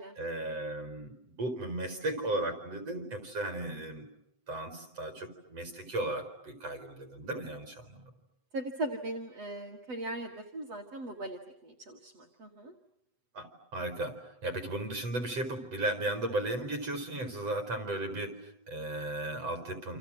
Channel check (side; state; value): left; late; 7.9 ms